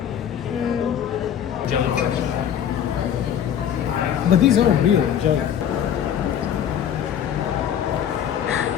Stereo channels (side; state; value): right; quieter; 9.3 dB